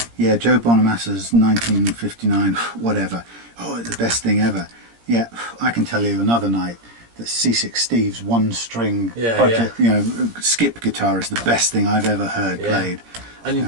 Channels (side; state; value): left; late; 17 ms